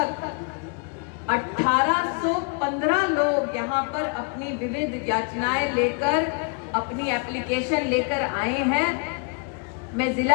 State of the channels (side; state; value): right; quieter; 36.3 dB